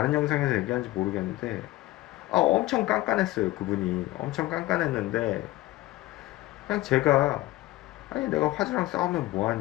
영상에서 얘기한지 모르겠는데 엄청 깐깐했어요. 그분이 엄청 깐깐했는데 그냥 제가 아니 내가 화주랑 싸우면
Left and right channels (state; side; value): quieter; right; 17.8 dB